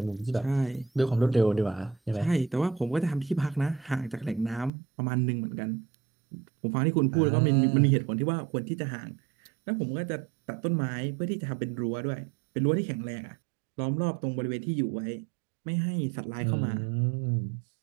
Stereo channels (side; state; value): left; drops out; at 4.7 s